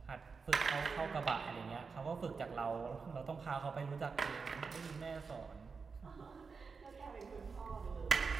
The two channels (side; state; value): left; quieter; 5.0 dB